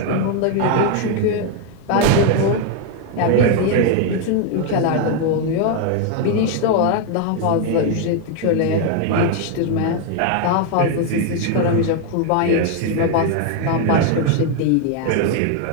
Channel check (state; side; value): different; both; correlation 0.01